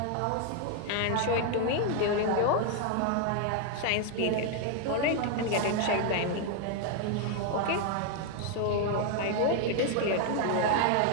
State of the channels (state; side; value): different; both; correlation 0.00